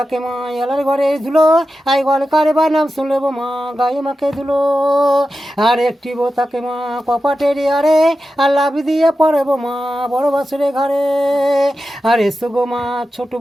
মা এলার ঘরে ধুলো আই গল কারে বা নাম শুনলেব মা গায়ে মাকে ধুলো আর একটি বোতাকে মা কপাটের আরে আর লাভি দিয়ে পড়ব মা বড় বাসুরে ঘরে আর এসো গো মা ছোট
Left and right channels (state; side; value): normal; both; correlation 0.92